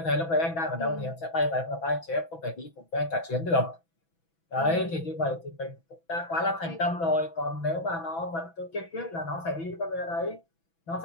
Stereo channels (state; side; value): late; right; 6.1 ms